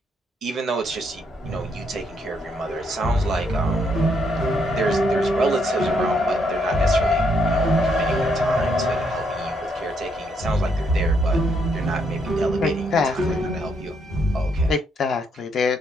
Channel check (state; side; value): normal; both; correlation 0.74